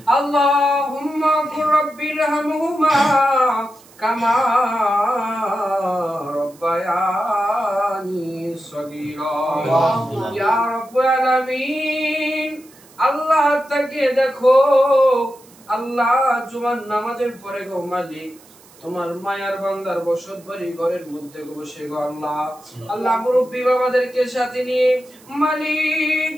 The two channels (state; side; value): noise; right; hiss, 26 dB below the sound